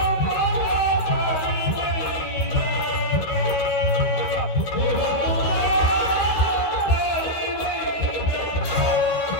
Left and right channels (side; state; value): right; late; 13 ms